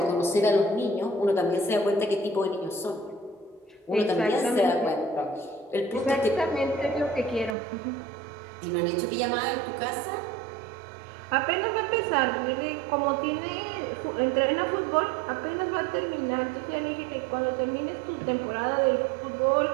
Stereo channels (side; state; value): left; drops out; at 7.6 s